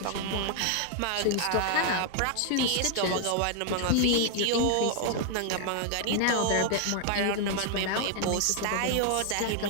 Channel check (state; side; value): different; both; correlation 0.00